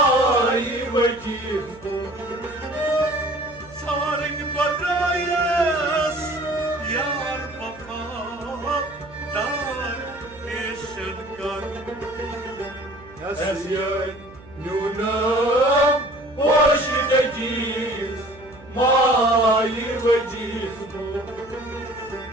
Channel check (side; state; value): right; noise; hum, 22 dB below the sound